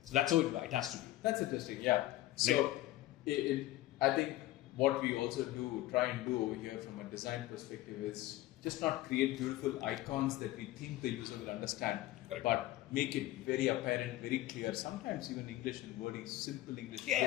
So that's how it has to be. That's interesting, yeah. So I think what we also try and do over here from a design perspective is just not create beautiful icons that we think the user will understand, but make it very apparent, very clear. Sometimes even English and wording, simple English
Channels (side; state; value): right; quieter; 16.0 dB